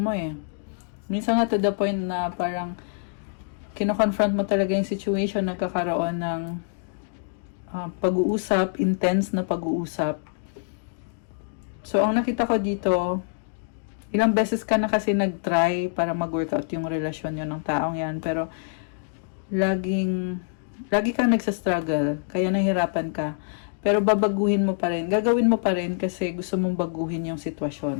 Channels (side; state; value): right; silent; digital silence